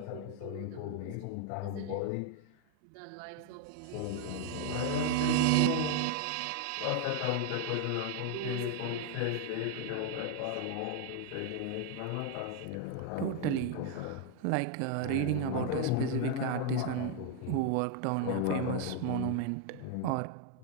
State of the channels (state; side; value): different; both; correlation 0.01